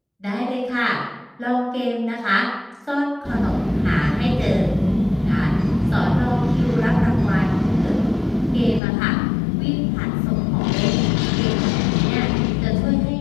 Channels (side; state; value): right; drops out; at 8.8 s